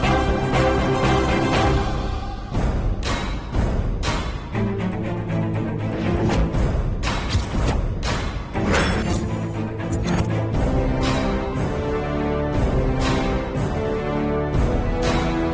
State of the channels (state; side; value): identical; both; correlation 1.00